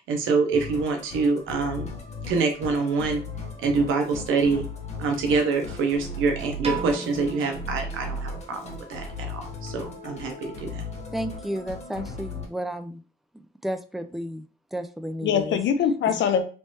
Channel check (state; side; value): normal; both; correlation 0.49